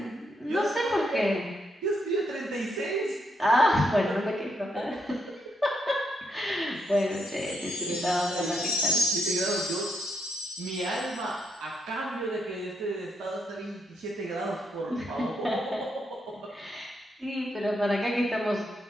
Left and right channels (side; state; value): both; normal; correlation 0.77